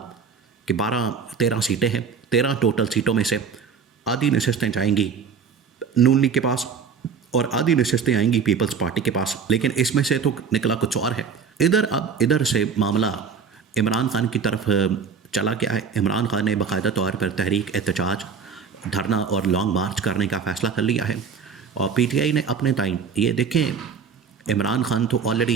कि 12-13 सीटें हैं, 13 टोटल सीटों में से आधी नशस्तें जाएंगी नून लीग के पास और आधी नशस्तें आएंगी पीपल्स पार्टी के पास। लेकिन इसमें से तो निकला कुछ और है। इधर से मामला इमरान खान की तरफ चला गया है। इमरान खान ने बाकायदा तौर पर तहरीक एहतजाज, धरना और लॉन्ग मार्च करने का फ़ैसला कर लिया है। और पीटीआई ने अपने टाइम ये देखें, इमरान खान तो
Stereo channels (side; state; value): left; quieter; 6.1 dB